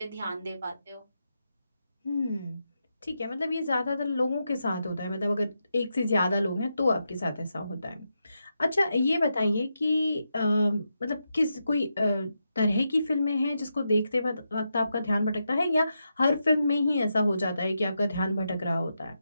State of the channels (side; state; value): both; inverted; correlation -0.86